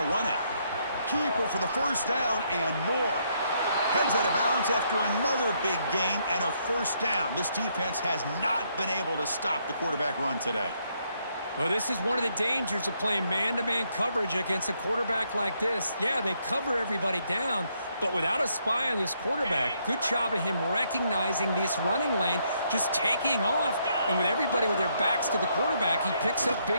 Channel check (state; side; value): inverted; both; correlation -0.73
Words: to run it. Keeper for the first down and more. Heads out of bounds after another big gain and a first down. This defense has not been able to stop the quarterback run today. Well, this is one of the dangers of playing man-to-man coverage against a quarterback like this. Yeah, they cover everybody down, but without a spy on this quarterback, good job of him recognizing this running lane, just taking off, and with everybody with their backs to the quarterback, he picks up